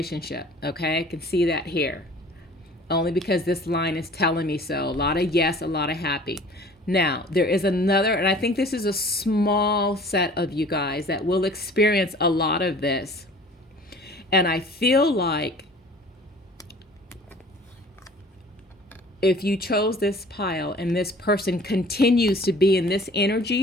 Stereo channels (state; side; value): normal; both; correlation 0.48